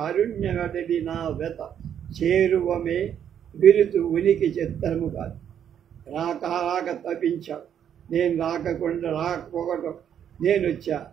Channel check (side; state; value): left; quieter; 9.1 dB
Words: నా వెత చేరువమే విరుతు ఉనికి చిత్రము కాదు. రాక రాక తప్పించావు. నేను రాకపోవటం నేను వచ్చా.